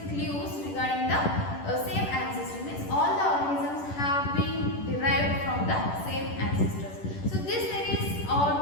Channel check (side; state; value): right; late; 10 ms